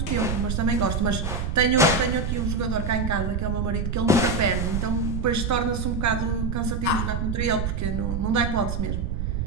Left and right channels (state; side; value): noise; right; rumble, 1 dB below the sound